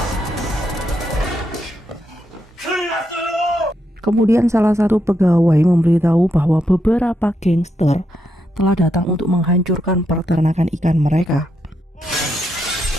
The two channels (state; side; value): normal; both; correlation 0.81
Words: Kemudian salah satu pegawai memberitahu bahwa beberapa gangster telah datang untuk menghancurkan peternakan ikan mereka.